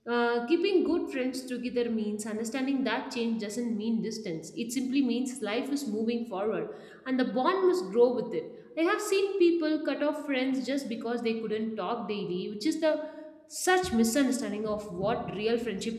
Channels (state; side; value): identical; both; correlation 1.00